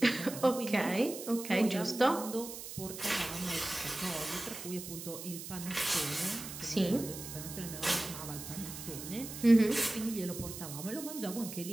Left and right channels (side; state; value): right; noise; hiss, 10 dB below the sound